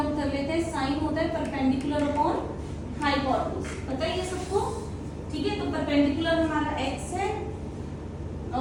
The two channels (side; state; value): both; identical; correlation 1.00